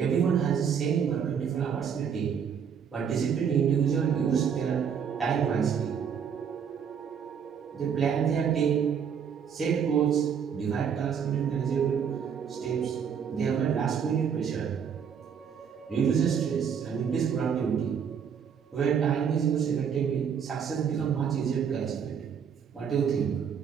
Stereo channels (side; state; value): left; quieter; 7.4 dB